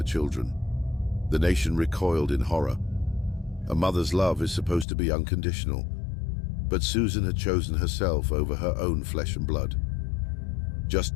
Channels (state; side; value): drops out; right; at 4.9 s